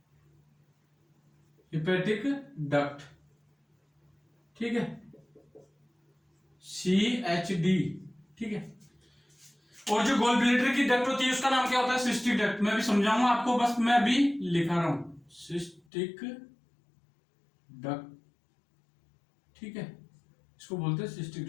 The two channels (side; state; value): right; drops out; at 15.8 s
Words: डक्ट, ठीक है, CHD, ठीक है। और जो गोल ब्लैडर की डक्ट होती है उसका नाम क्या होता है, सिस्टिक डक्ट। मैं भी समझाऊंगा आपको, बस मैं अभी लिखा रहा हूं, सिस्टिक डक्ट, ठीक है, इसको बोलते हैं सिस्टिक